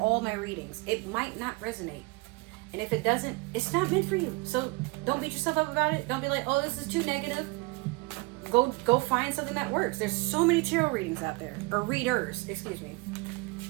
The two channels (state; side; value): quieter; left; 25.5 dB